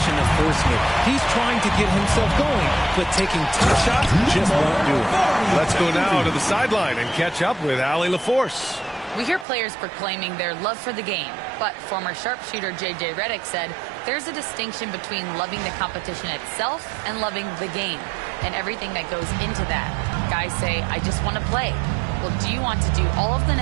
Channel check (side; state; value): left; drops out; at 9.5 s